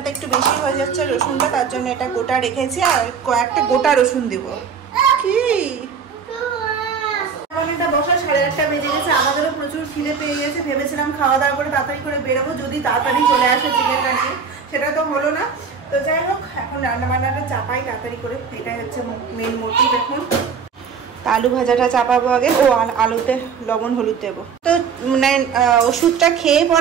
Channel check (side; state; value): left; quieter; 6.2 dB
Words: একটু বেশি হয়ে যাচ্ছে রসুনটা, তার জন্য এটা গোটা রেখেছি। আর কয়েকটা গোটা রসুন দেবো। কি বসা 8:30 বেজে গেছে, আমাদেরও প্রচুর খিদে পেয়ে গেছে। ভেবেছিলাম খাওয়া দাওয়া করে তাড়াতাড়ি করে বেরোবো, যদি তাড়াতাড়ি চলে আসে চিকেনটা নিয়ে, সেটা তো হলো না। তো যাই হোক, এখন রান্না বান্নাটা চাপাই তাড়াতাড়ি করে, এটাই হচ্ছে মেন মোটিভ এখন। আলু ভাজাটা চাপাবো আগে, ও আলুতে লবণ হলুদ দেবো। তো মানে ওষুধটা খেয়ে